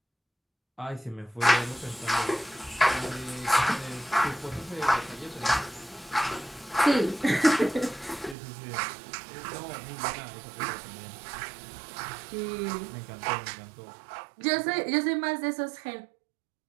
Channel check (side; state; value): left; drops out; at 8.3 s